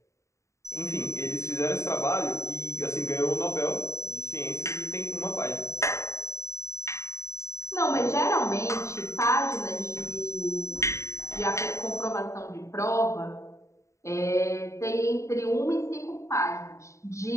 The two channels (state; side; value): late; right; 0.14 ms